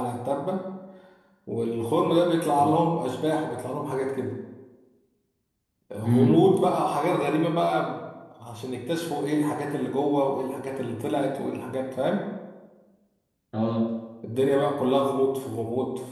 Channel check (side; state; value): both; identical; correlation 1.00